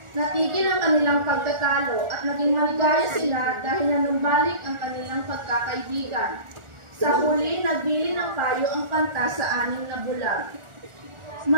Natigil ang kanilang pagtatalo at naging maligaya sila dahil nanumbalik ang kanilang pagkakaibigan. Sa huli, nagbili ng payo ang kanta sa anim na bulag.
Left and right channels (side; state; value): left; late; 1.4 ms